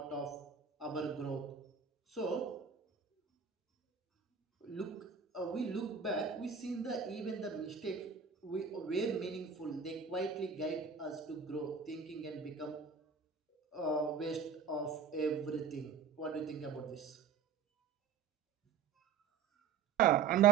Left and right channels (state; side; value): quieter; left; 6.5 dB